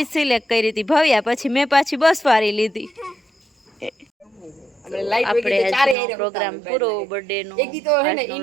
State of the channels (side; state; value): left; drops out; at 6.0 s